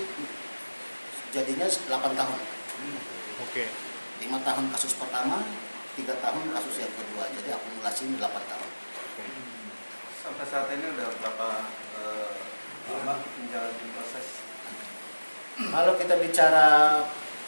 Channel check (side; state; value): both; inverted; correlation -1.00